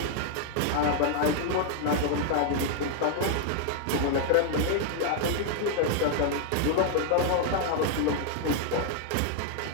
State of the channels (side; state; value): both; different; correlation 0.00